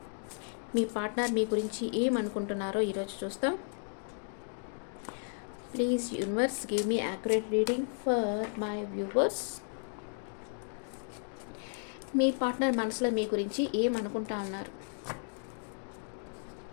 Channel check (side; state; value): right; silent; 55 dB below the other